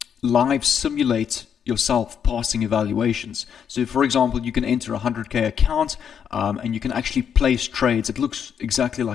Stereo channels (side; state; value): right; quieter; 7.9 dB